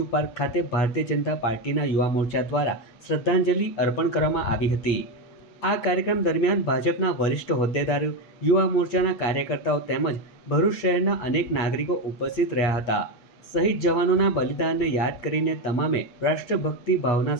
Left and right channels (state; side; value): late; right; 8.3 ms